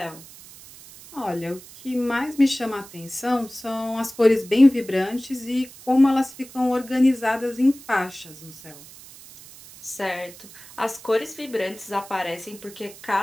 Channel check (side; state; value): right; noise; hiss, 19 dB below the sound